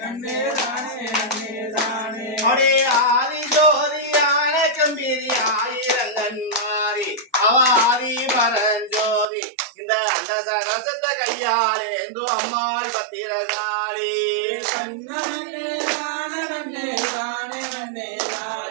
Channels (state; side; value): drops out; left; at 9.2 s